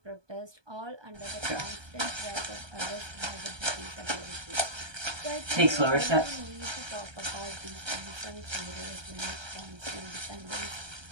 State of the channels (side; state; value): left; late; 1.2 ms